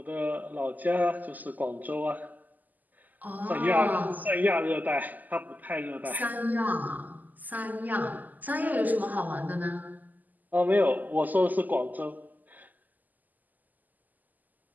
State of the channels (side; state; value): left; late; 0.083 ms